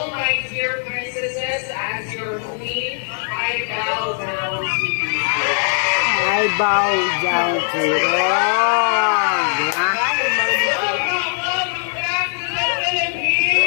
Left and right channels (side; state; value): right; silent; digital silence